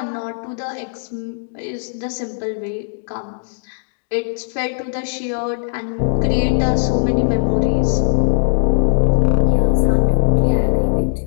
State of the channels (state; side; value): silent; right; digital silence